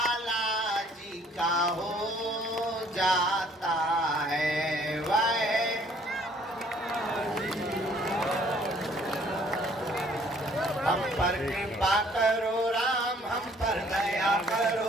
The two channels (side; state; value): both; normal; correlation 0.59